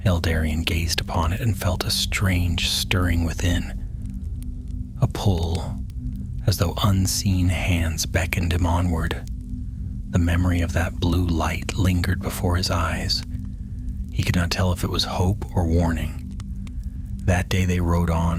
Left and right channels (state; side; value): identical; both; correlation 1.00